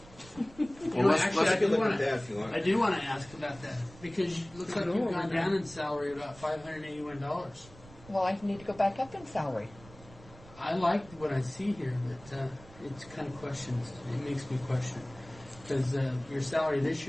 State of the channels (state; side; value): noise; right; rumble, 21 dB below the sound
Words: You Well, know, let's- actually, let's I do look want at that if you to. want. I do want to ask about that because it looks like you've gone down in salary about $581. Well, I need to go back up in salary. I like what I see here, but it's kind of questions. It makes me question because your salary this